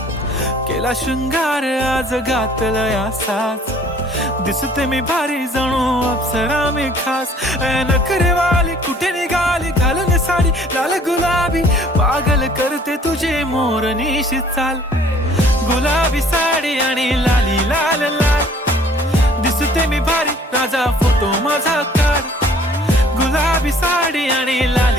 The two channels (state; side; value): normal; both; correlation 0.56